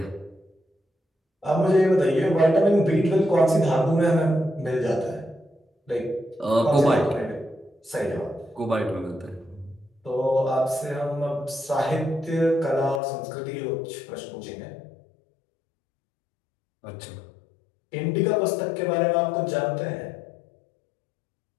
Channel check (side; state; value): right; drops out; at 13.0 s